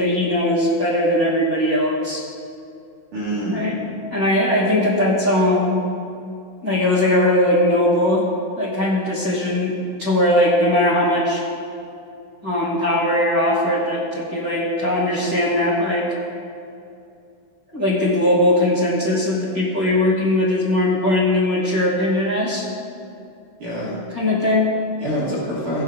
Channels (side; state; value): left; late; 16 ms